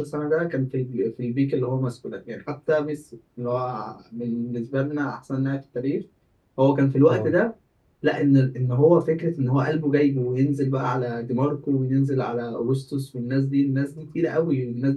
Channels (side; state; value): both; identical; correlation 1.00